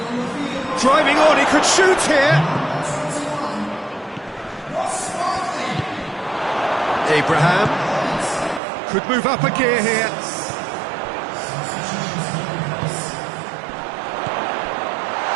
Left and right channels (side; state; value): left; drops out; at 8.6 s